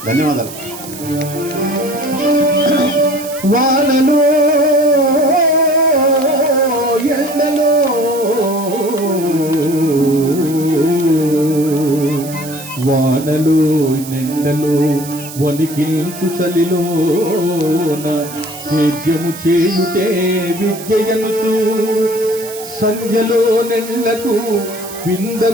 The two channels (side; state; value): right; noise; hiss, 13 dB below the sound